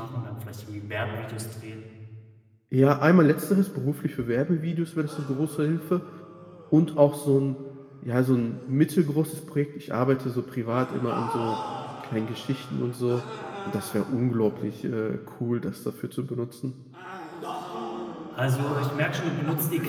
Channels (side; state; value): both; identical; correlation 1.00